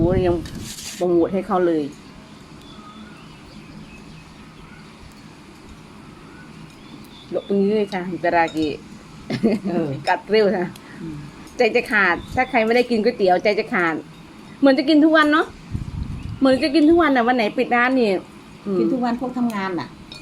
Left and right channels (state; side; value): identical; both; correlation 1.00